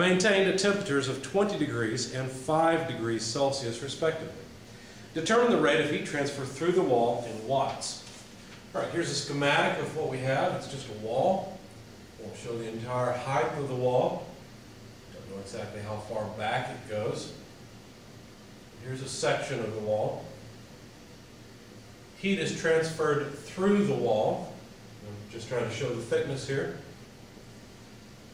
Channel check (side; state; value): both; identical; correlation 1.00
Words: at temperatures of 20 degrees and 5 degrees Celsius respectively. Determine the rate of heat transfer through the wall in watts. All right, here's a schematic of what we have. It's just a wall. Won't show the entire height of the wall. Don't know exactly how far back it goes. Here's a section of the wall. Heat is transferred through the wall. I'm just trying to show the thickness here,